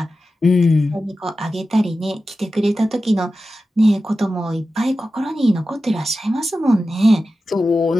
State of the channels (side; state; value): both; normal; correlation 0.93